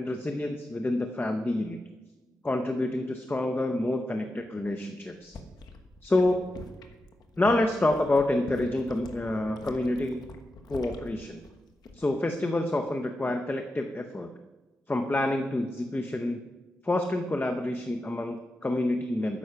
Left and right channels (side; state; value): both; normal; correlation 0.89